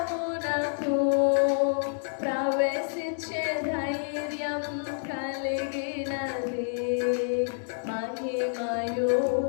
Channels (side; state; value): right; silent; digital silence